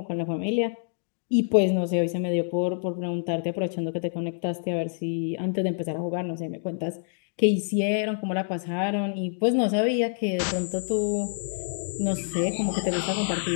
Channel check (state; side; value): silent; right; digital silence